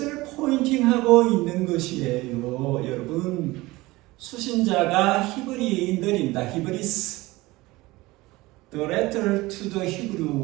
포인팅하고 있는 것이에요. 여러분, 수신자가 히브리인들입니다. 히브리스. The letter to the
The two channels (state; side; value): quieter; left; 20.3 dB